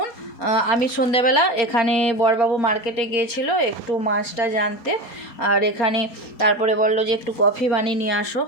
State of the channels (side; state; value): right; late; 4.3 ms